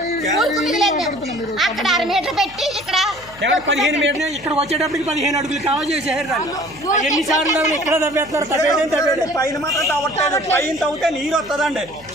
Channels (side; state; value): left; noise; hum, 23 dB below the sound